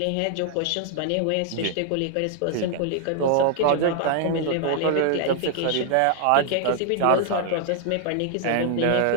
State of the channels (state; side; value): different; both; correlation 0.00